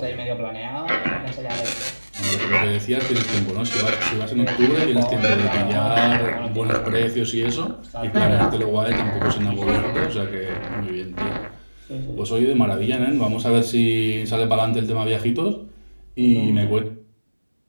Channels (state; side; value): inverted; both; correlation -1.00